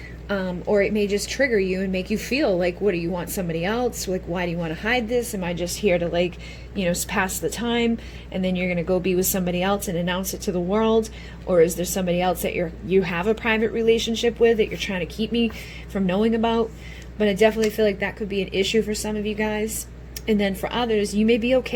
Or it may just trigger you and make you feel like, what do you want, somebody else? Like, why do you want to hide this? Am I just here to, like, you know, pass the time, and then you're going to go be with somebody else and announce it to the world? Or is there somebody else that you have a private relationship with that you're trying to keep me from knowing about? But I definitely feel like that could be an issue for some of you guys. And then for others, you may be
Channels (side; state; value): both; identical; correlation 1.00